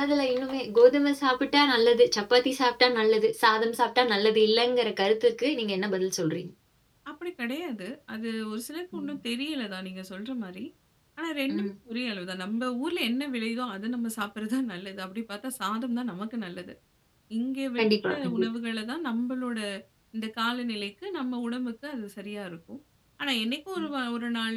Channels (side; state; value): both; identical; correlation 1.00